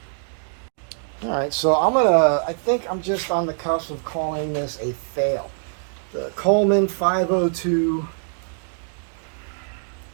All right, so I think I'm just on the cusp of calling this a fail. The Coleman 502,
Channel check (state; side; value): silent; left; 63 dB below the other